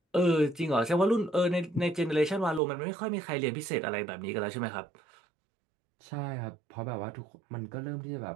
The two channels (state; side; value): drops out; left; at 2.6 s